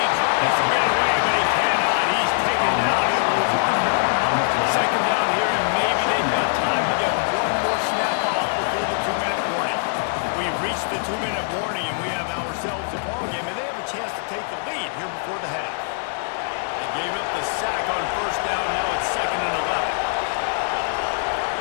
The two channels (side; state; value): right; silent; digital silence